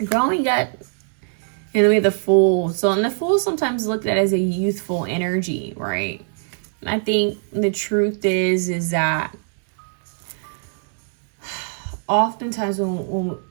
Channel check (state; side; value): silent; left; 64 dB below the other